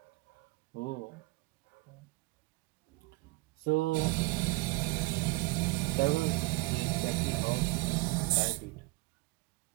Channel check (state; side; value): quieter; left; 23.8 dB